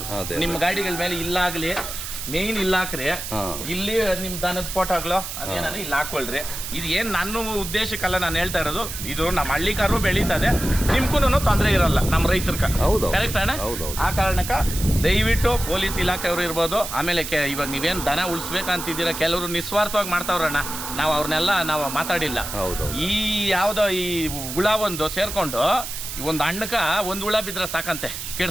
ನಿಮ್ಮ ಗಾಡಿಗಳ ಮೇಲೆ ಇಲ್ಲಾಗ್ಲಿ ಮೇನ್ ಇಲ್ಲ ಹಾಕ್ರಿ, ಇಲ್ಲಿ ನಿಮ್ ದನದ ಫೋಟೋಗಳು ಅದೇನ ಇಲ್ಲಿ ಹಾಕೊಳ್ರಿ. ಇದು ಏನ್ ನನ್ನ ಉದ್ದೇಶಕ್ಕಲ್ಲ ನಾನು ಹೇಳ್ತಾ ಇರೋದು, ಇದು ನಮ್ಮ ಹಳ್ಳಿಕಾರು ಬೆಳೀತದೆ, ನಿಮ್ಗೂ ತೊಂದರೆ ಇರಲ್ಲ ನಮ್ಮ ರೈತರ್ಕ. ಕರೆಕ್ಟ್ ಅಣ್ಣ? ಆ ಕಾರಣಕ್ಕ ದಯವಿಟ್ಟು ಪೊಲೀಸ್ ಇಲಾಖೆಯವರು ಇರ್ಬೋದು, ಆಮೇಲೆ ಇವಾಗ ನೀವೇನ್ ದನ ಉಳಿಸ್ಬೇಕಂತಿದ್ದೀರಾ, ಕೆಲವರು ನಿಸ್ವಾರ್ಥವಾಗಿ ಮಾಡ್ತಾವ್ರಣ್ಣ, ನಾವು ಅವ್ರನ್ನೆಲ್ಲ ನಾವು ಮಾತಾಡಿಲ್ಲ. ಈ ಯಾವ್ದೋ ಈ ಹುಳ ಒಂದು ಸೇರ್ಕೊಂಡು ಒಂದು ಹಣ್ಣಕ್ಕ ಒಂದು ಹುಳ ಬಿದ್ರೆ ಸಾಕಂತೆ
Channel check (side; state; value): right; noise; hiss, 7 dB below the sound